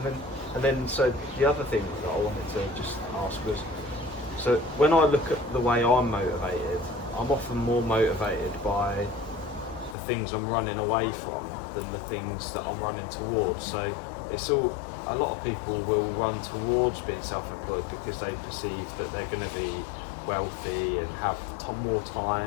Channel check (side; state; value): right; drops out; at 10.0 s